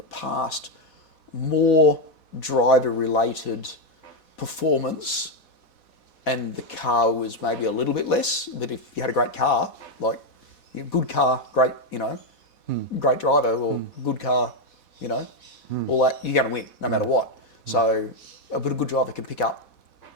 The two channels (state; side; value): late; right; 4.1 ms